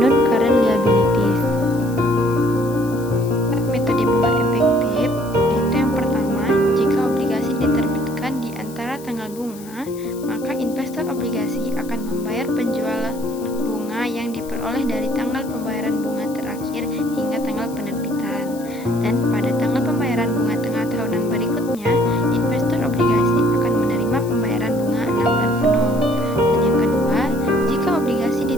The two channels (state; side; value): noise; left; hiss, 19 dB below the sound